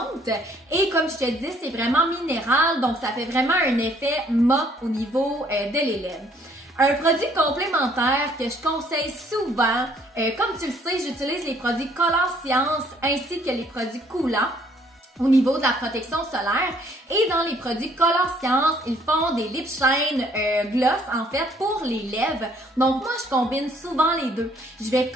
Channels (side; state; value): both; normal; correlation 0.63